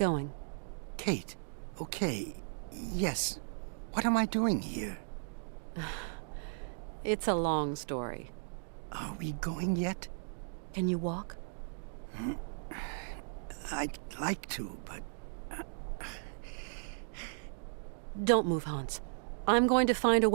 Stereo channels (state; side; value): silent; left; digital silence